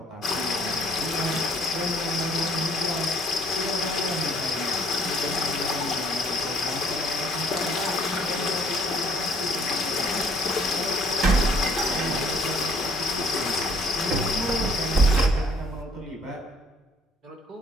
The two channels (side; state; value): both; normal; correlation 0.61